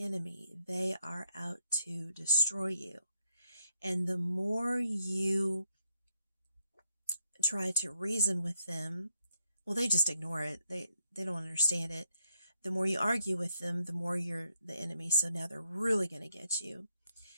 They are out to destroy you. And the more you try to reason with them, well, they just ignore it. They don't understand it. The more you argue with them, the more you're the enemy. So now they're really going to get you.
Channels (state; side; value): inverted; both; correlation -0.77